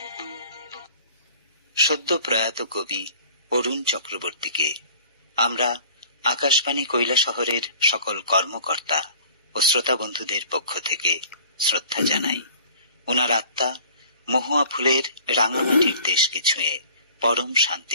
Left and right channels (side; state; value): both; inverted; correlation -0.48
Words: সদ্য প্রয়াত কবি অরুণ চক্রবর্তীকে আমরা আকাশবাণী কৈলাসহরের সকল কর্মকর্তা ও শ্রোতা বন্ধুদের পক্ষ থেকে শ্রদ্ধা জানাই। ওনার আত্মা মহুয়া ফুলের রাঙামাটির দেশকে ছুঁয়ে পরম